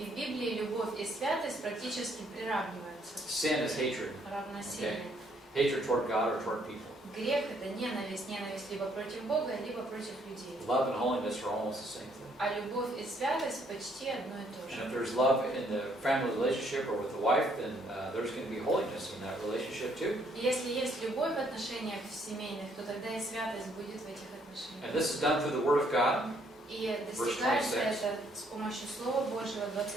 Библии любовь и святость практически приравниваются, Sin is hatred. равносильны. Hatred toward God or toward people. Грех – это ненависть либо против Бога, либо против людей. Love and holiness are almost the same thing. А любовь и святость почти одно и то And же. if there's love in the family relationship or with the wife, then there's going to be holiness in that relationship too. И если есть любовь в отношениях семейных, то тогда и святость будет в этих отношениях. And this is done through the Word of God. И достигается это с помощью Слова Божьего,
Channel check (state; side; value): normal; both; correlation 0.68